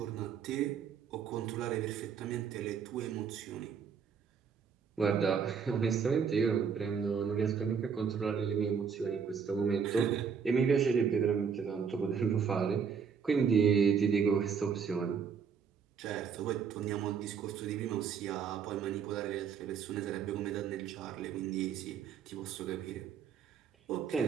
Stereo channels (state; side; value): quieter; left; 6.7 dB